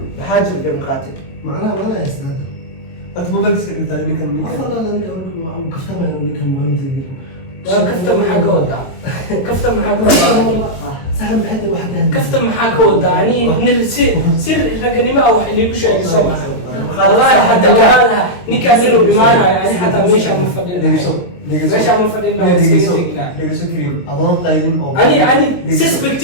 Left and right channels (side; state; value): right; late; 22 ms